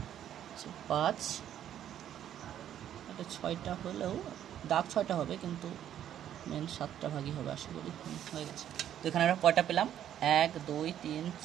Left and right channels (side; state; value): left; quieter; 10.6 dB